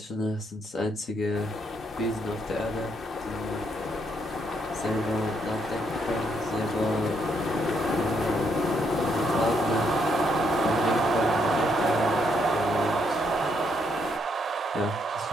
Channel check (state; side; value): normal; both; correlation 0.74